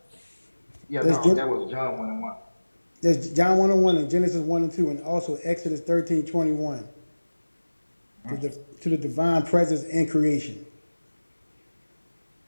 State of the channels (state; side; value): inverted; both; correlation -1.00